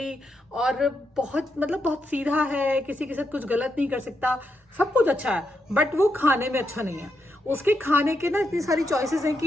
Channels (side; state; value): both; normal; correlation 0.82